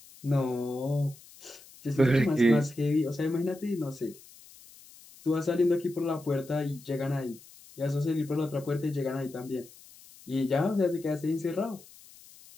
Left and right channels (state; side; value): noise; left; hiss, 22 dB below the sound